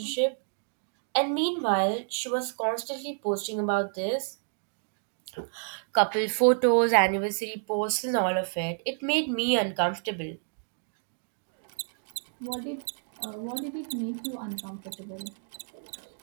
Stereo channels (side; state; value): left; silent; 58 dB below the other